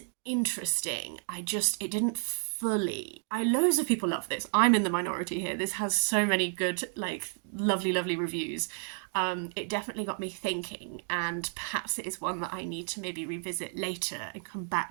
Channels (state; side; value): silent; left; 57 dB below the other